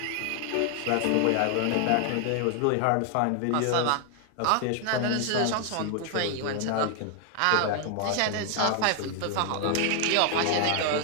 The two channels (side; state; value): both; different; correlation 0.00